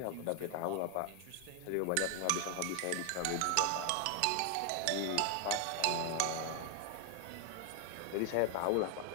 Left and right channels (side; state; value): both; different; correlation 0.00